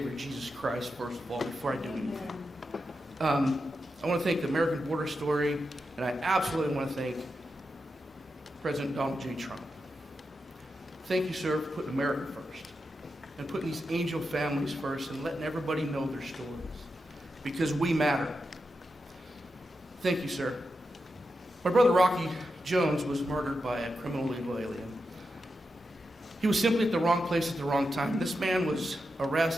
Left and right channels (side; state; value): both; normal; correlation 0.88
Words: Jesus Christ, first of all, before I do anything. I want to thank the American Border Story, and I absolutely want to thank President Donald J. Trump. Thank you, sir, for putting America first, and putting these angel families first, and letting everybody know their stories, because we matter. Thank you, sir. My brother Rocky Jones was murdered by a criminal illegal alien. He was simply at the wrong place at the wrong time. This man was